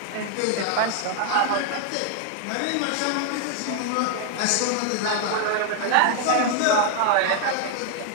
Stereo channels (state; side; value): different; both; correlation 0.00